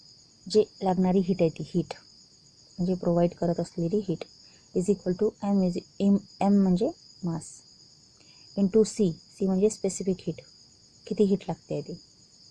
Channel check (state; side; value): identical; both; correlation 1.00